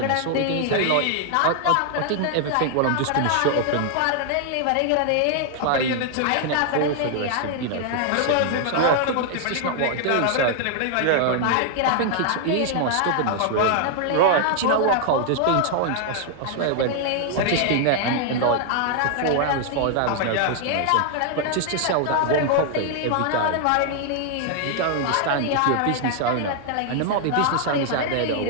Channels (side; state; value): both; different; correlation 0.00